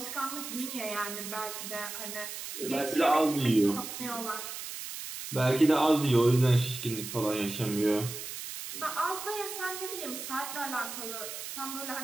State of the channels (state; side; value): noise; right; hiss, 8 dB below the sound